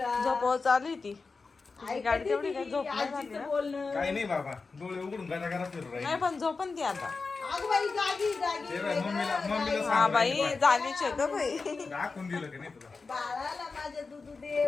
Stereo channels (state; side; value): quieter; right; 4.3 dB